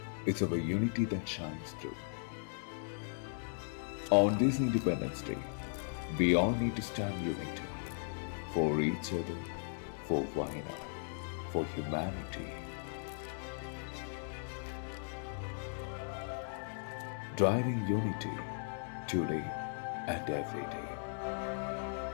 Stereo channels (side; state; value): right; silent; digital silence